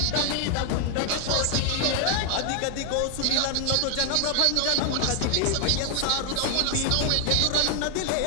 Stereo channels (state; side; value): different; both; correlation 0.00